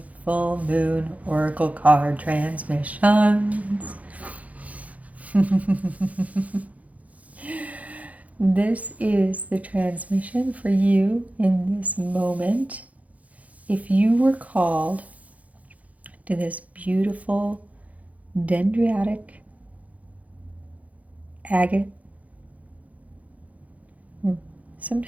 full moon oracle card transmissions. This is the transmission for you in this moment. If you were called to this beautiful Dendritic Agate,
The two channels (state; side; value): late; left; 0.070 ms